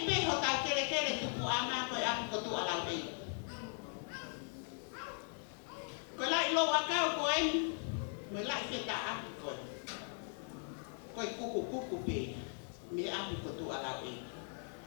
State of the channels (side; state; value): right; silent; 52 dB below the other